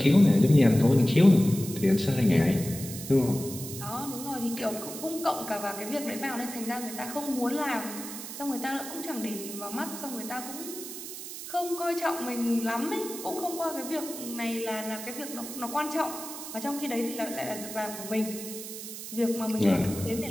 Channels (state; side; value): noise; right; hiss, 10 dB below the sound